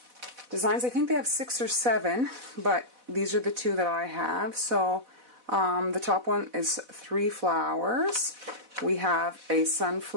designs. I think they have 6 or 7, but these are the 2 that I have. So the top one is 3 flowers. We have a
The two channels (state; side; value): late; left; 4.1 ms